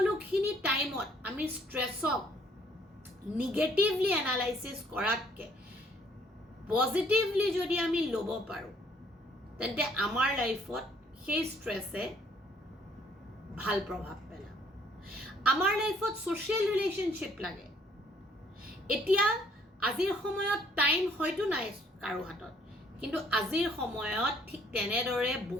টাইমত আমি স্ট্ৰেসক নিগেটিভলি এনালাইসিস কৰাতকে পজিটিভলি যদি আমি ল'ব পাৰো তেন্তে আমাৰ লাইফত সেই স্ট্ৰেসে ভাল প্ৰভাৱ পেলায় আমাৰ লাইফত সোশ্যাল ৰিলেশনশিপ লাগে এতিয়া আজিৰ সময়ত টাইম হয়তো নাই কাৰো হাতত কিন্তু আজিৰ সময়ত ঠিক তেনেদৰে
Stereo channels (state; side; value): normal; both; correlation 0.63